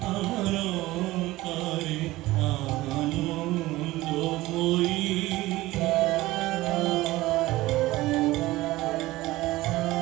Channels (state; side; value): quieter; left; 18.2 dB